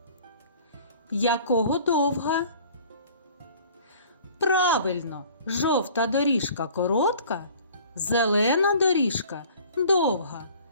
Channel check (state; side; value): inverted; both; correlation -0.49